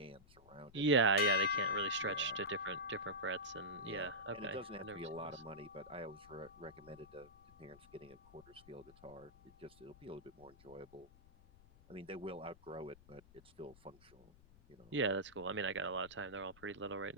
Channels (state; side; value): noise; left; rumble, 23 dB below the sound